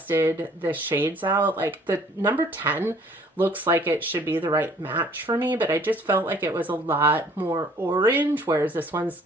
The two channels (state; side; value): normal; both; correlation 0.57